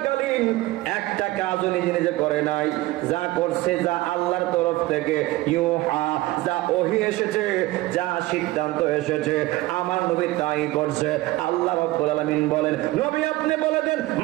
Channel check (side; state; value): left; quieter; 18.7 dB